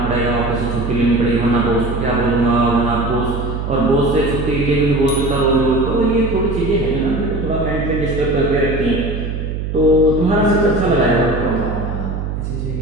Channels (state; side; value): noise; right; hum, 4 dB below the sound